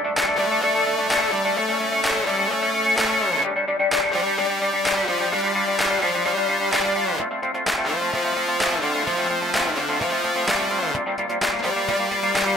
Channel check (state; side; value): normal; both; correlation 0.65